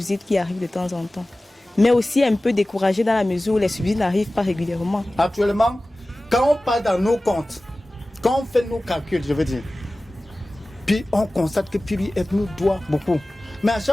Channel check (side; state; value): both; normal; correlation 0.97